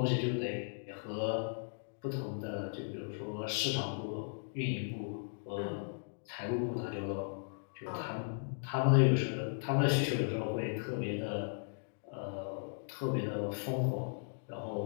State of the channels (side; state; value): right; silent; digital silence